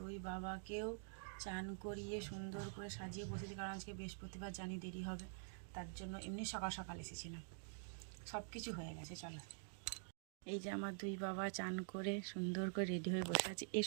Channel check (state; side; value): silent; left; digital silence